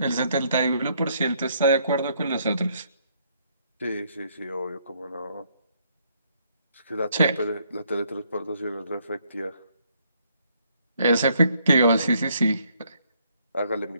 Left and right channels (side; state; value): both; inverted; correlation -0.70